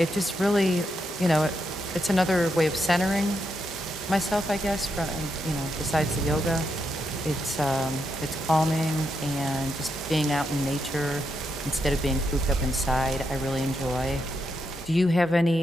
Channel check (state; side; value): normal; both; correlation 0.82